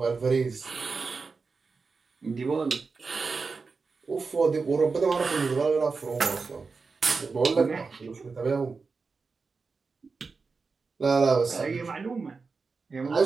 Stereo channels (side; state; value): left; quieter; 4.5 dB